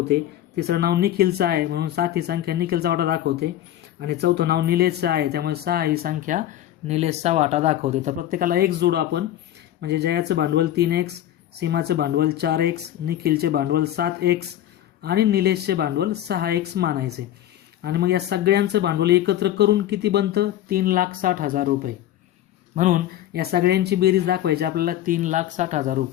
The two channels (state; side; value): quieter; right; 12.5 dB